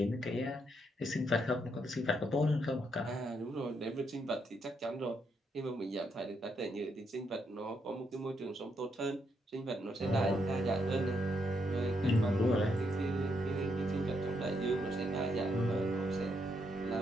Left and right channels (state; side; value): normal; both; correlation 0.78